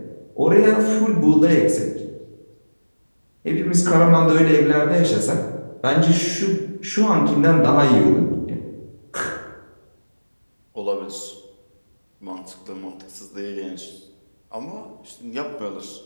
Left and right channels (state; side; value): inverted; both; correlation -1.00